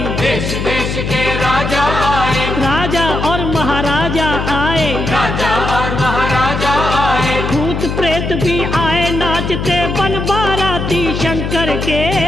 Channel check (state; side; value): noise; left; hum, 3 dB below the sound